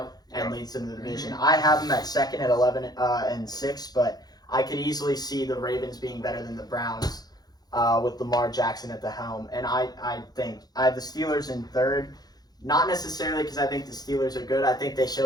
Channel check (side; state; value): right; late; 0.19 ms